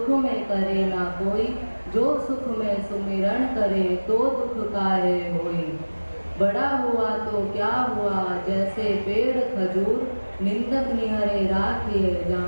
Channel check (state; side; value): inverted; both; correlation -1.00